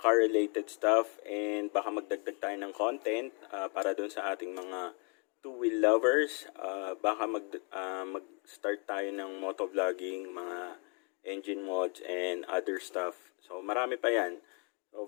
stuff, and baka magdagdag tayo ng content para dun sa ating mga two-wheel lovers. Baka mag-start tayo ng motovlogging, mga engine mods, and other stuff. So, marami pa yan. So,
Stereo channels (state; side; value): quieter; right; 36.4 dB